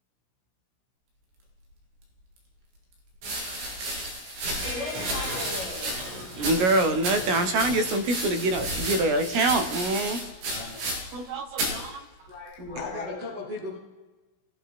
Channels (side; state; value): left; late; 16 ms